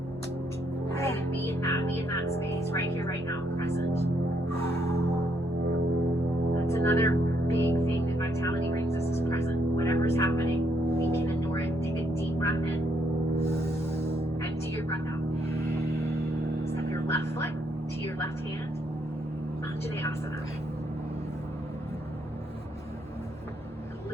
Right? Be in that space, right here, right now, present. That's another big thing that vitality brings us is present. Whatever's happening, we can endure it. Take a deep breath in. Empty your breath out. Step your left foot to your left hand. Anjaneyasana. And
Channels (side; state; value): both; normal; correlation 0.73